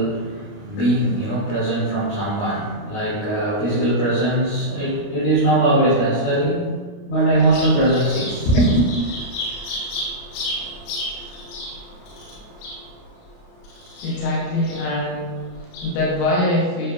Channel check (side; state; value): right; late; 29 ms